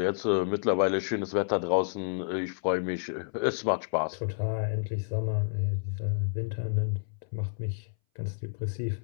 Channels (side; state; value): right; silent; 58 dB below the other